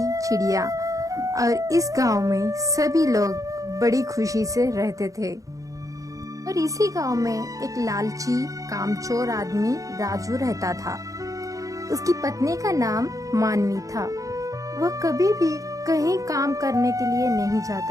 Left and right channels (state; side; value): late; left; 0.16 ms